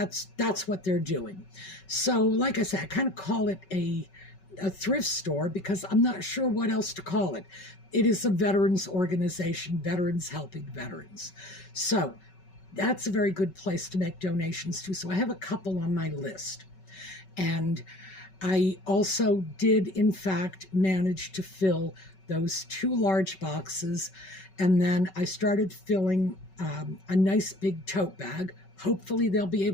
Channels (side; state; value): right; late; 5.3 ms